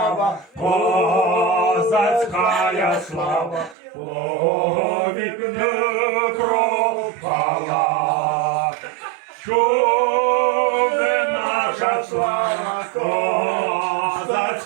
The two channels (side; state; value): left; drops out; at 3.8 s